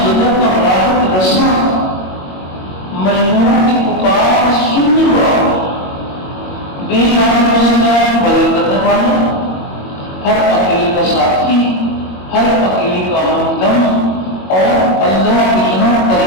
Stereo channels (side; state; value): right; late; 21 ms